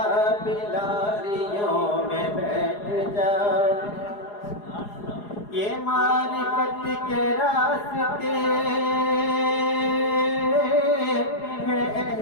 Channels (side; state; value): right; late; 4.8 ms